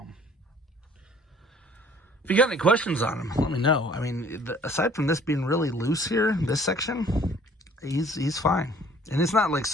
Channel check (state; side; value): normal; both; correlation 0.55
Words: If you got any questions on him, let me know. I mean, aside from this being really loose here, this section, he's fine. And it's not like